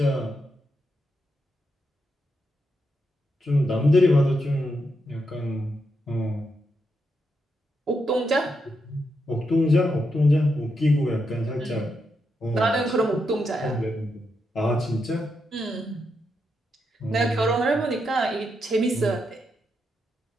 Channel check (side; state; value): both; normal; correlation 0.83